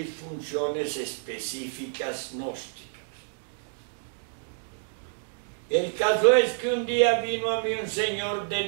funciones específicas gnósticas. El caso es que un día vino a mí un señor de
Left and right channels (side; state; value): left; silent; digital silence